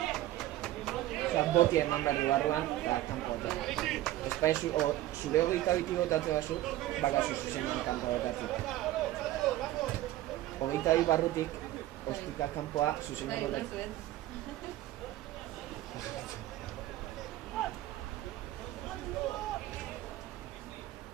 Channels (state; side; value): quieter; left; 15.0 dB